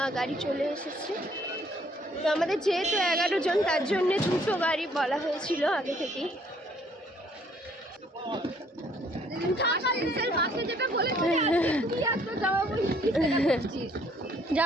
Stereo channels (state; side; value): normal; both; correlation 0.63